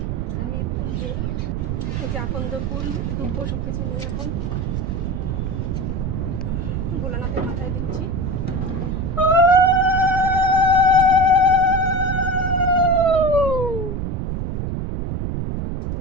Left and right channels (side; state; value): right; noise; rumble, 2 dB below the sound